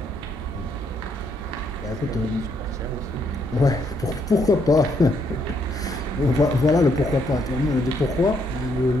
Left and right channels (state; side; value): normal; both; correlation 0.73